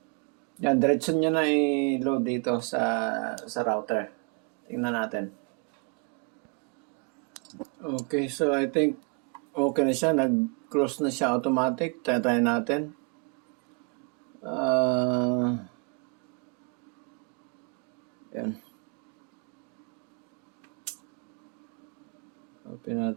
Yan, diretso niya na i-load dito sa router. Tingnan natin. Okay, so I think okay na siya. Nag-close na siya automatic. Try natin. Yan. Open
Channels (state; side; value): quieter; left; 33.8 dB